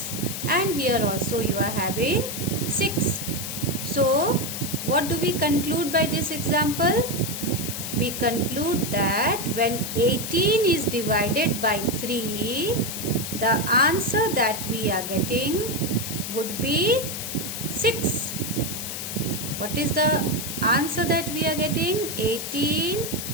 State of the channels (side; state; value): left; noise; hiss, 6 dB below the sound